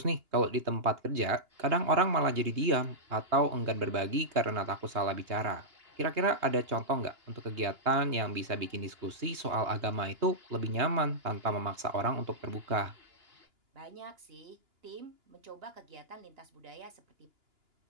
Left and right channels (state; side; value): late; left; 2.9 ms